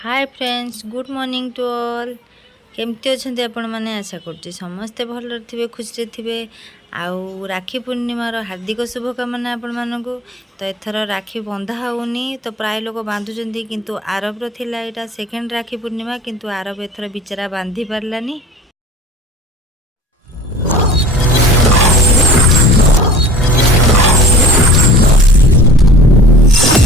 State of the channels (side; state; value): both; normal; correlation 0.45